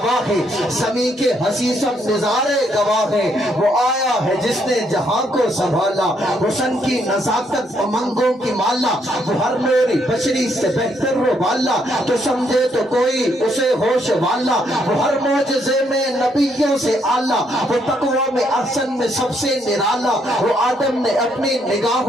ہیں، زمین کے ہنسی سب نظارے گواہ ہیں. وہ آیا ہے جس نے جہاں کو سنبھالا، حسن کی نزاکت امنگوں کی مالا. وہ ہر نوری بشری سے بہتر وہ والا، تو سمجھے تو کوئی اسے ہوش والا. وہ ہر معجزے میں نبیوں سے اعلیٰ، وہ تقویٰ میں احسن میں سب سے نرالا. وہ آدم نے اپنی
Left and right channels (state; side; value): normal; both; correlation 0.73